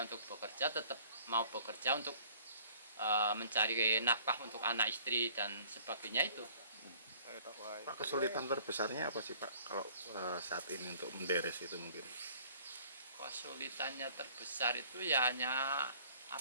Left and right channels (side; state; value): both; inverted; correlation -0.54